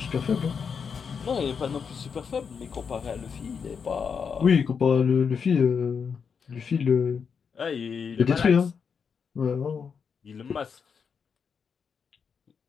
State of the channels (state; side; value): quieter; right; 6.3 dB